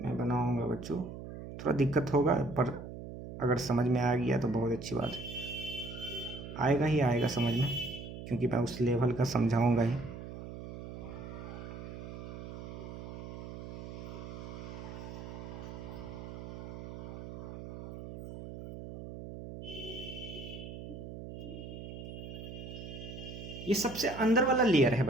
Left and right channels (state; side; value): noise; right; hum, 10 dB below the sound